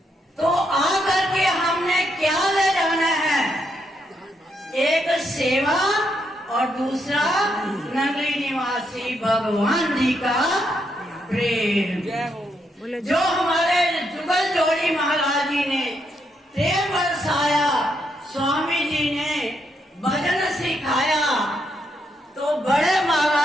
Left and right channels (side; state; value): both; normal; correlation 0.78